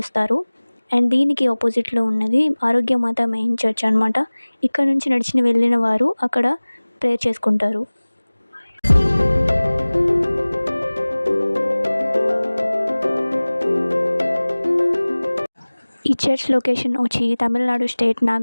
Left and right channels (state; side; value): inverted; both; correlation -1.00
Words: అండ్ దీనికి ఆపోజిట్లో ఉన్నది ఆరోగ్యమాత మెయిన్ చర్చ్ అనమాట. ఇక్కడ నుంచి నడిచిన వెళ్ళిన వారు అక్కడ ప్రేయర్ చేసుకుంటారు. ఈ చర్చ్ లొకేషన్ వచ్చి తమిళనాడు స్టేట్